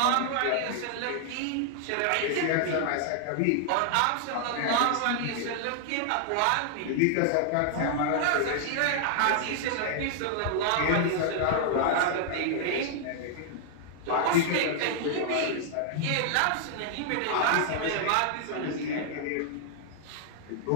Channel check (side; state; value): both; different; correlation -0.01